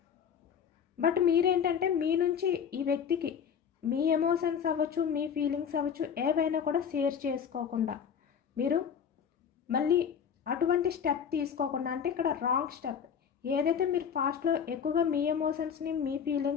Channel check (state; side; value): quieter; right; 7.5 dB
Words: బట్ మీరేంటంటే మీ నుంచి ఈ వ్యక్తికి మీ ఎమోషన్స్ అవ్వచ్చు, మీ ఫీలింగ్స్ అవ్వచ్చు, ఏవైనా కూడా షేర్ చేసుకోకుండా మీరు మళ్ళీ అటువంటి స్టెప్ తీసుకోకుండా, అంటే ఇక్కడ రాంగ్ స్టెప్ ఏదైతే మీరు ఫాస్ట్లో ఎక్కువగా మీ ఎమోషన్స్ని, మీ